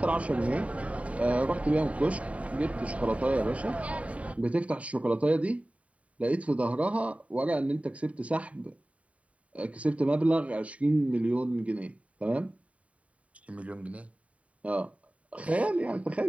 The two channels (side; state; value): left; late; 0.066 ms